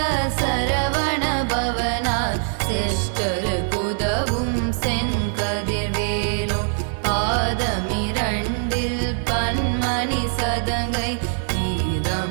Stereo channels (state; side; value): silent; left; 64 dB below the other